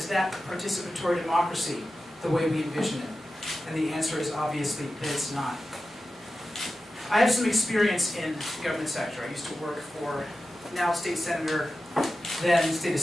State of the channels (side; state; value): both; normal; correlation 0.93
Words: that participatory democracy the way we envision it? And the answer is obviously that it's not. I have some experience in the government sector. I used to work for now State Senator, then State